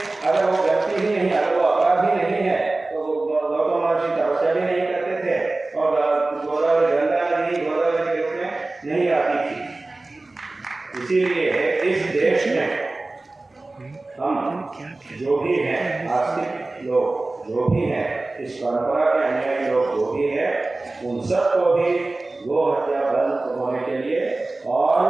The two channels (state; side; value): quieter; left; 3.1 dB